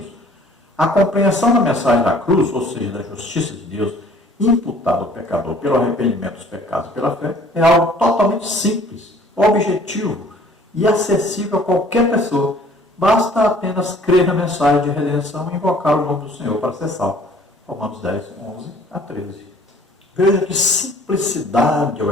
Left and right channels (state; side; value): normal; both; correlation 0.54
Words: a compreensão da mensagem da cruz, ou seja, da justiça de Deus, imputada ao pecador pelo arrependimento dos pecados e pela fé, é algo totalmente simples, objetivo e acessível a qualquer pessoa. Basta apenas crer na mensagem de redenção e invocar o nome do Senhor para ser salvo. Romanos 10, 11 a 13. Veja que simplicidade é o